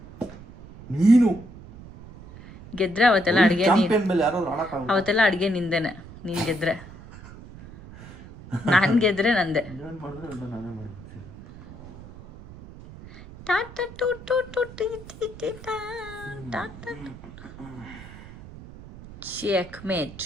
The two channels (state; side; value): noise; right; rumble, 17 dB below the sound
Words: ನೀನು ಗೆದ್ರೆ ಅವತ್ತೆಲ್ಲ ಅಡುಗೆ ಅವತ್ತೆಲ್ಲ ಅಡುಗೆ ನಿಂದೇನೆ. ನೀನು ಗೆದ್ರೆ ನಾನು ಗೆದ್ರೆ ನಂದೆ. ಚೆಕ್ಮೇಟ್.